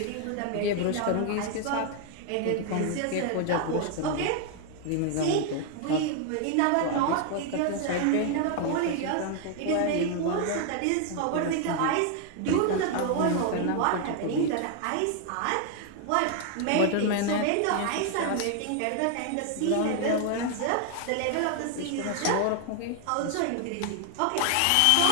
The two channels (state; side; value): different; both; correlation 0.00